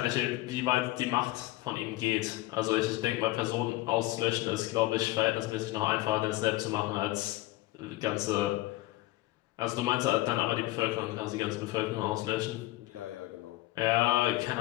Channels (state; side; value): quieter; right; 18.1 dB